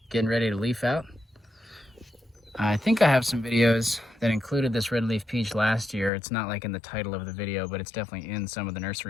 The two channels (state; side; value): drops out; right; at 6.1 s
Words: getting ready to leaf out. I think I have some videos that included this red leaf peach last year. It's not like in the title of the video, but it's definitely in some of the